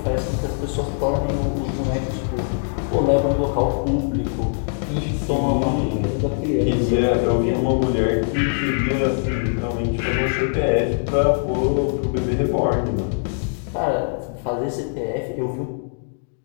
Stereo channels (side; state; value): right; silent; digital silence